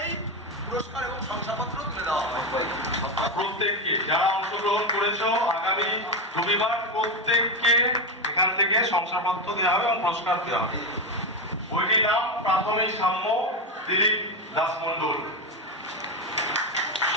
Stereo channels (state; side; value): normal; both; correlation 0.12